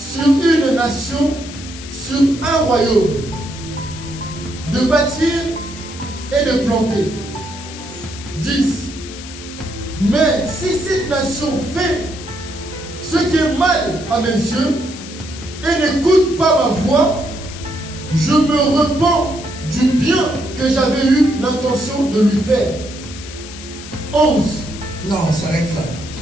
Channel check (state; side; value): noise; left; hiss, 14 dB below the sound